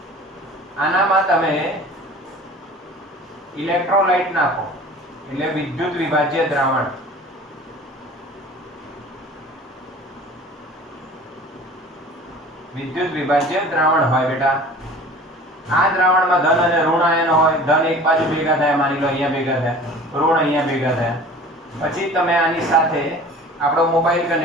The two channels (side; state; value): both; normal; correlation 0.43